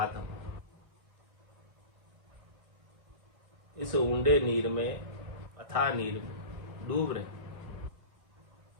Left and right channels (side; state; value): left; late; 1.6 ms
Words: हम। इस ऊंडे नीर में, अथाह नीर में डूब रहे,